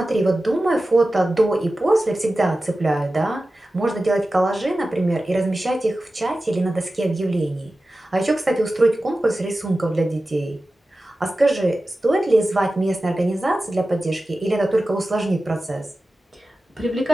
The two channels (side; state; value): both; normal; correlation 0.95